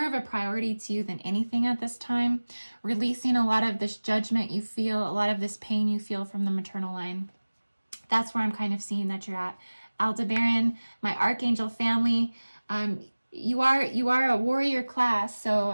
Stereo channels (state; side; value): inverted; both; correlation -1.00